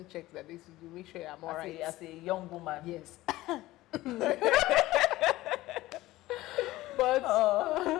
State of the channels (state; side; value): quieter; right; 17.3 dB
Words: checks that they should do. Make sure I'm alright. As a young woman. Yes. But